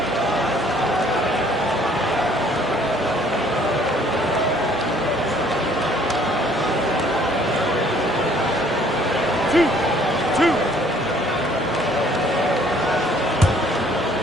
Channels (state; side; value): normal; both; correlation 0.59